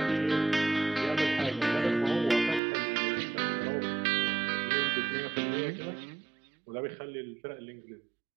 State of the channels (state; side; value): drops out; left; at 2.6 s